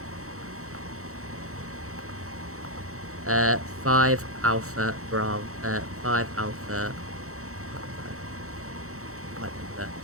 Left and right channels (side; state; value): left; late; 0.64 ms